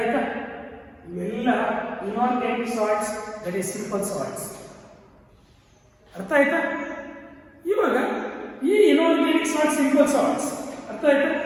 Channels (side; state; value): both; identical; correlation 1.00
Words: ಇವೆಲ್ಲ inorganic salts, that is simple salts. ಅರ್ಥ ಆಯ್ತಾ? ಇವಾಗ ಈ inorganic salts simple salts ಅರ್ಥ ಆಯ್ತಾ?